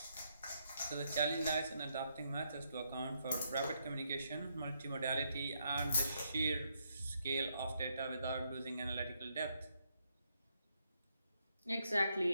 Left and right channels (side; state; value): both; inverted; correlation -0.77